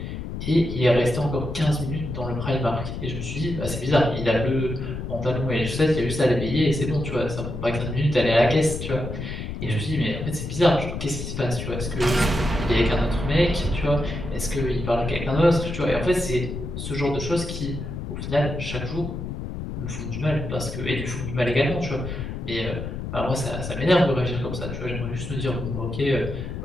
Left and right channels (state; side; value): noise; left; rumble, 6 dB below the sound